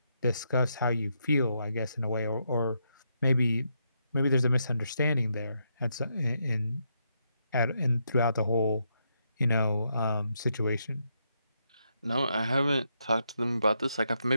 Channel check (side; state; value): both; inverted; correlation -0.80